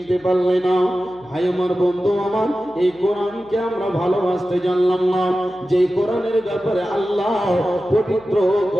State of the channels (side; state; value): right; noise; hum, 29 dB below the sound